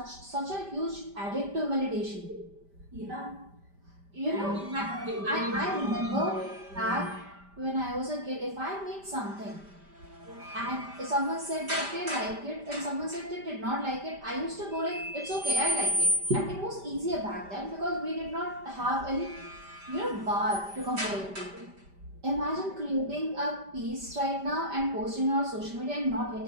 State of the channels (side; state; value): left; late; 5.1 ms